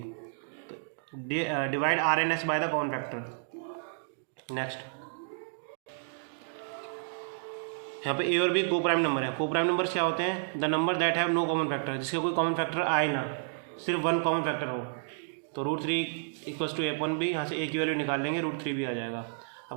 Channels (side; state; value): left; silent; digital silence